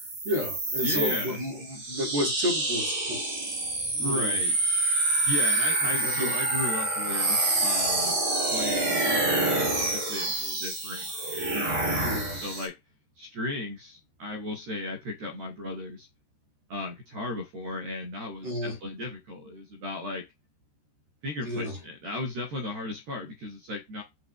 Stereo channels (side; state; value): left; late; 13 ms